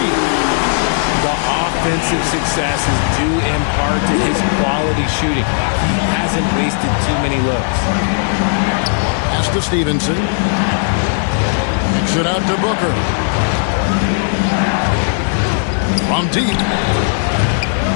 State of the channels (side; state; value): right; silent; 69 dB below the other